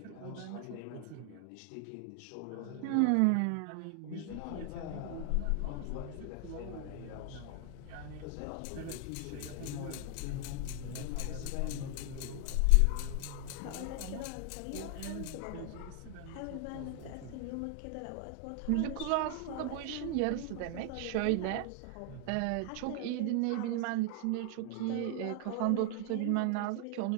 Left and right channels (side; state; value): both; different; correlation 0.00